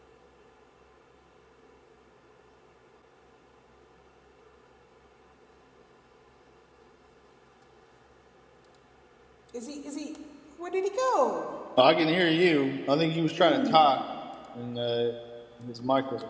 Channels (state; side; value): identical; both; correlation 1.00